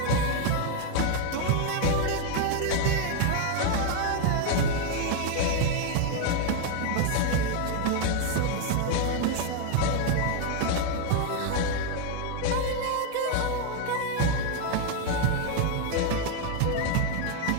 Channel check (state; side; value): different; both; correlation 0.01